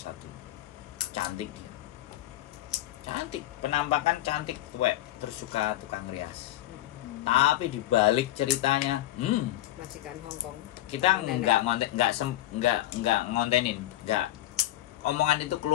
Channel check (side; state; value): right; quieter; 14.6 dB